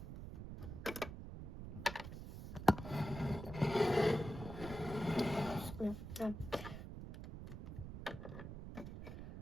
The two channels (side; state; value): right; noise; rumble, 9 dB below the sound